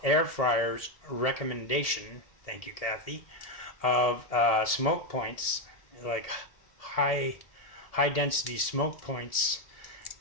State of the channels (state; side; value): late; right; 1.7 ms